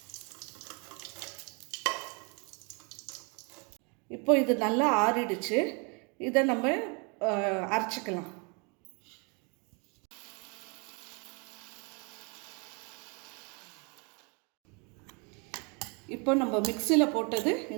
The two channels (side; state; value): left; quieter; 32.9 dB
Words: இப்போ இது நல்லா ஆறிடுச்சு. இதை நம்ம அரைச்சிக்கலாம். இப்போ நம்ம மிக்சியில் போட்டது